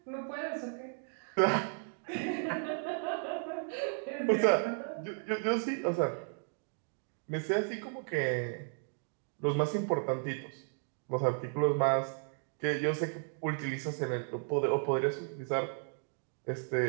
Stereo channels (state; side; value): silent; left; 55 dB below the other